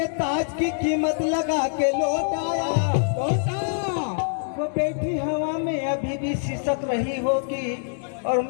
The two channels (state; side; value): silent; right; digital silence